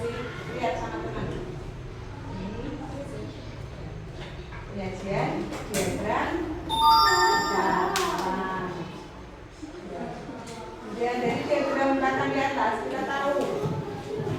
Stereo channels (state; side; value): identical; both; correlation 1.00